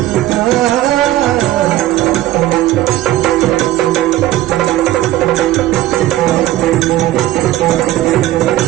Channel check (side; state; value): left; quieter; 15.0 dB